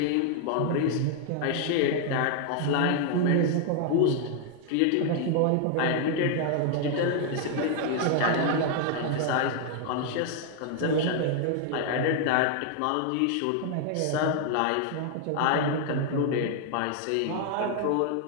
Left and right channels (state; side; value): different; both; correlation 0.00